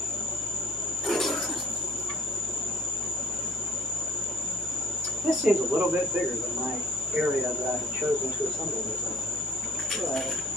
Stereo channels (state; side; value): normal; both; correlation 0.54